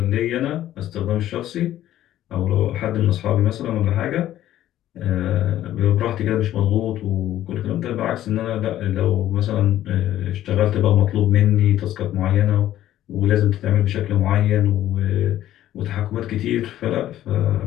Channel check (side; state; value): right; quieter; 12.9 dB